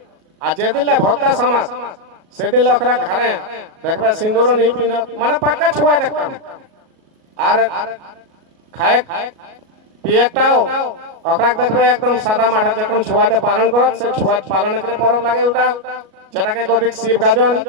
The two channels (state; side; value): late; left; 37 ms